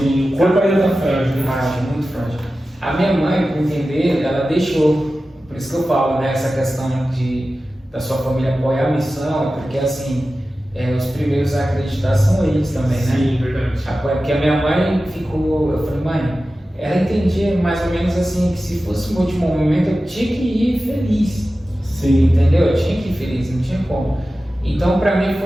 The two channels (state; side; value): normal; both; correlation 0.94